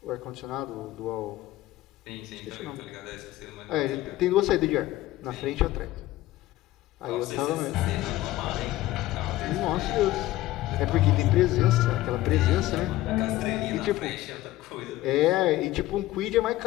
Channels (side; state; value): right; quieter; 16.0 dB